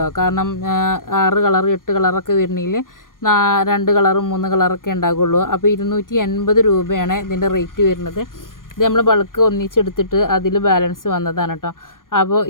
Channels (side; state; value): right; late; 0.90 ms